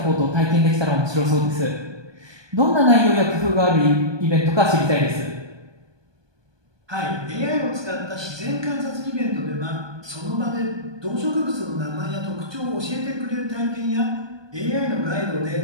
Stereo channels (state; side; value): late; left; 1.2 ms